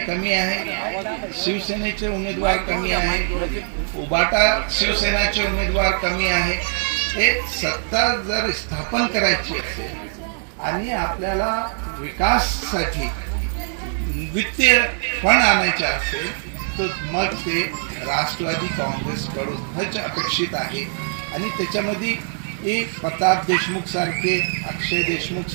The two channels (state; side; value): silent; left; 64 dB below the other